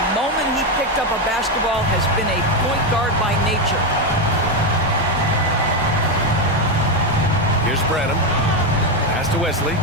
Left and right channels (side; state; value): both; normal; correlation 0.08